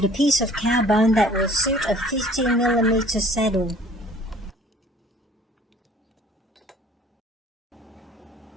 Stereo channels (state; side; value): normal; both; correlation 0.52